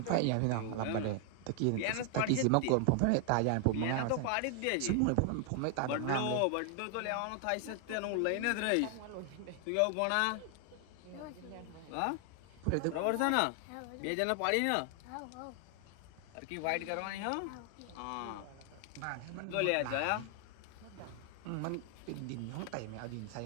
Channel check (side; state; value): both; different; correlation 0.00